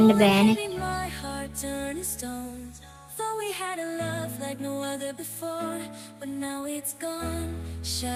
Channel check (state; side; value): identical; both; correlation 1.00